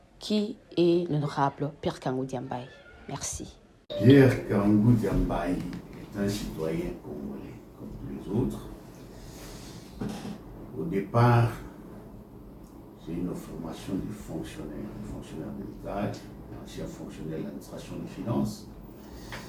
qui est l'honorable Pierre Kangou Diambaye? Merci. Pierre Kangou Diambaye est un citoyen congolais, comme tous les autres. Au départ, j'ai une formation de fonctionnaire de l'État, ancien fonctionnaire de l'administration des finances.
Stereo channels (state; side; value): identical; both; correlation 1.00